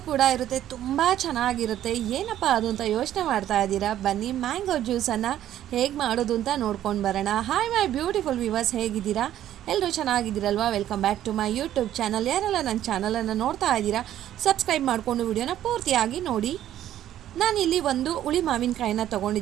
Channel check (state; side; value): quieter; left; 12.0 dB